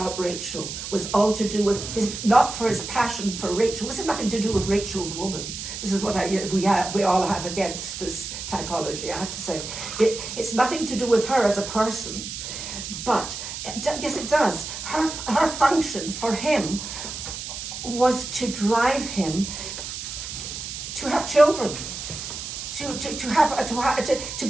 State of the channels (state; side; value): noise; right; hiss, 7 dB below the sound